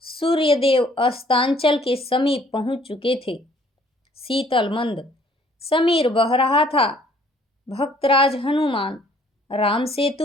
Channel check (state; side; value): normal; both; correlation 0.60